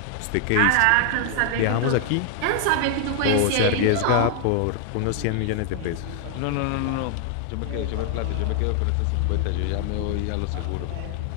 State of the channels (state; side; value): different; both; correlation 0.00